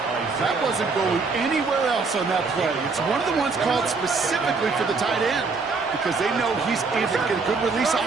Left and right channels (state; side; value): quieter; left; 4.4 dB